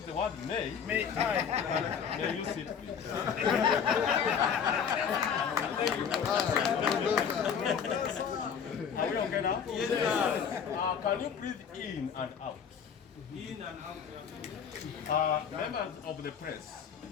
the word may. May I? May you sit, please. Are we okay now? Yes, can you breathe in and out? In and out. Members of the press,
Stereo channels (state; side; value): quieter; right; 7.3 dB